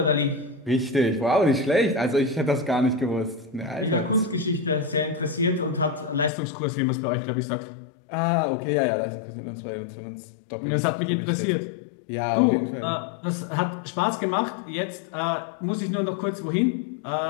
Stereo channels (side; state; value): right; drops out; at 6.3 s